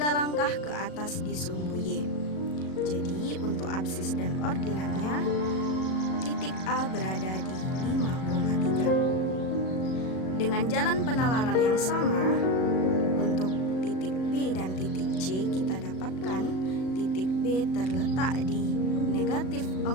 langkah ke atas di sumbu Y. Jadi untuk absis dan ordinatnya titik A berada di 5,3. Dengan jalan penalaran yang sama, untuk titik B dan titik C kita dapatkan titik B terletak di negatif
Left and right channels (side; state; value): right; late; 37 ms